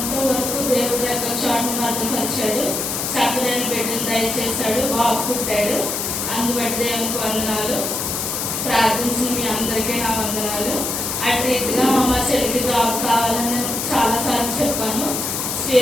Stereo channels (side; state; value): left; noise; hiss, 2 dB below the sound